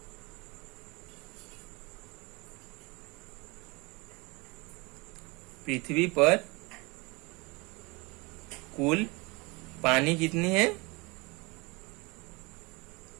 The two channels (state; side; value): quieter; left; 26.2 dB